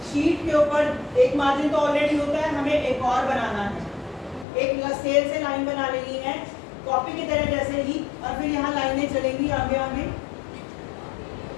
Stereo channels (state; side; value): drops out; right; at 4.5 s